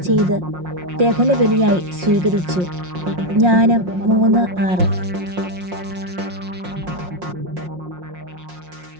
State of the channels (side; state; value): left; late; 5.6 ms